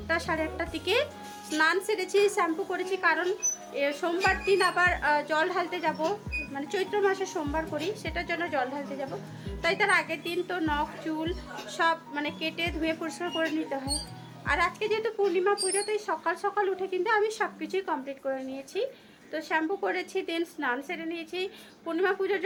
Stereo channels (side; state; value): both; identical; correlation 1.00